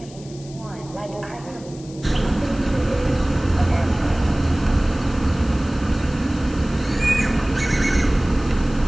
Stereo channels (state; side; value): noise; left; hiss, 21 dB below the sound